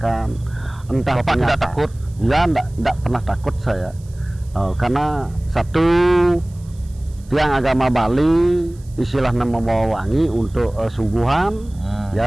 Entah Bapak tidak takut? Ya, tidak pernah takut saya, karena satu tiang agama Bali istilahnya membawa wangi untuk suguhan.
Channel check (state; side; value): noise; right; hiss, 28 dB below the sound